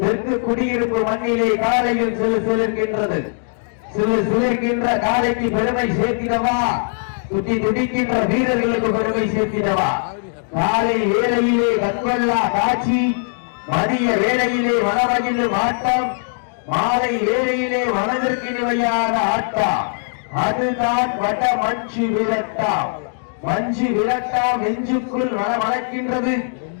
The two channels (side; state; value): right; silent; 60 dB below the other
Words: தெற்கு குடியிருப்பு மண்ணிலே காலையில் சிலிர்க்கின்றது. சிலிர்க்கின்ற காலைக்கு பெருமை சேர்த்திடவா, துட்டி துடிக்கின்ற வீரர்களுக்கு பெருமை சேர்த்திடவா. காலை வேளையிலே கண்கொள்ளா காட்சி, மதிய வேளையிலே மனமகிழும் ஆட்டம், மாலை வேளையிலே மனதிற்கு நிவையான ஆட்டம். அதுதான் வட மஞ்சு விரட்டா. மஞ்சு விரட்டா நெஞ்சுக்குள் மனமணக்கின்றது.